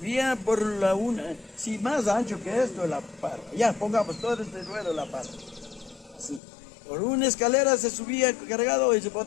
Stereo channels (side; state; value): right; drops out; at 6.4 s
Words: por la una, sí, más ancho que esto la parva. Ya, pongamos todo este ruedo la parva. Así. Por una escalera se subía cargado y se